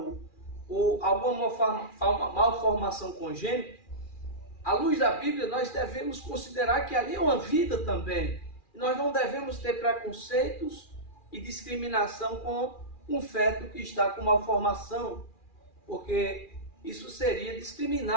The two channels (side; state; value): right; late; 2.4 ms